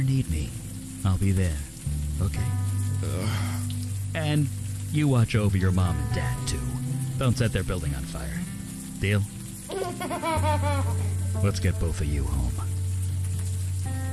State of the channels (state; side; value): identical; both; correlation 1.00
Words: need me, I'll be there. Okay? And You watch over your mom and dad, too. Don't set their building on fire. Deal? Let's get both of you home.